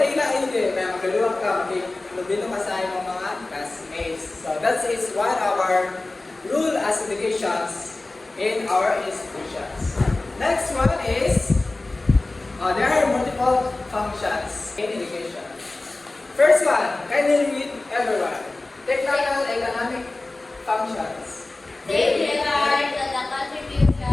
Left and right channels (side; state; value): right; quieter; 3.0 dB